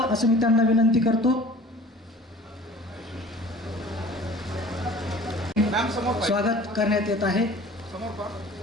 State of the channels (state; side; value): normal; both; correlation 0.45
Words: असं मी त्यांना विनंती करतो। स्वागत करण्यात येत आहे। समोर पहा।